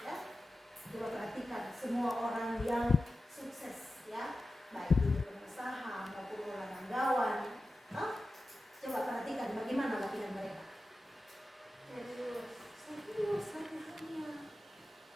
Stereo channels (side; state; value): both; normal; correlation 0.93